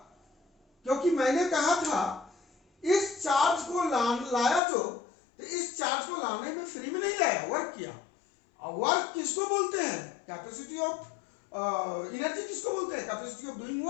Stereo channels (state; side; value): drops out; right; at 4.6 s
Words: क्योंकि मैंने कहा था इस चार्ज को लाया जो, तो इस चार्ज को लाने में फ्री में नहीं लाया, वर्क किया. और वर्क किसको बोलते हैं, कैपेसिटी ऑफ एनर्जी किसको बोलते हैं, कैपेसिटी ऑफ डूइंग